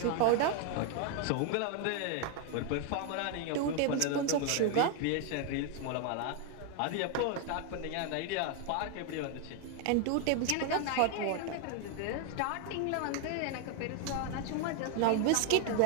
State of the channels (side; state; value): both; different; correlation 0.01